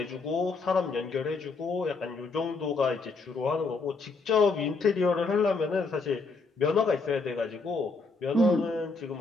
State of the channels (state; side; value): quieter; right; 4.0 dB